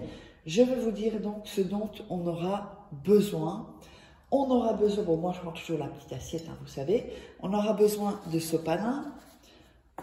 Je vais vous dire donc ce dont on aura besoin. On aura besoin, bon moi je prends toujours la petite assiette, hein, vous savez, on aura besoin de sopalin,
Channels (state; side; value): identical; both; correlation 1.00